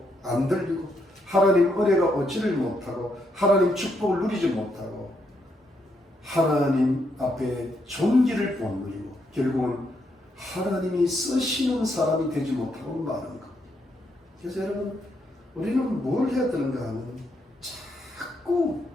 안 들리고, 하나님 은혜가 얻지를 못하고, 하나님 축복을 누리지 못하고, 하나님 앞에 존귀를 못 누리고, 결국은 하나님이 쓰시는 사람이 되지 못하고 마는 것. 그래서 여러분, 우리는 뭘 해야 되는가 하면 자꾸,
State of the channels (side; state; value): both; normal; correlation 0.77